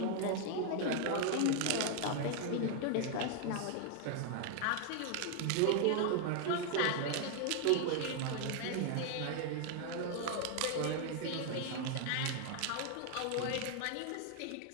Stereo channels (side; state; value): both; different; correlation 0.00